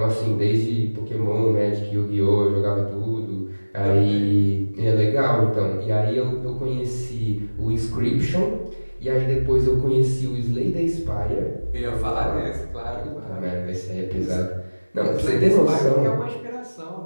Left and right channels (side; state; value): both; inverted; correlation -1.00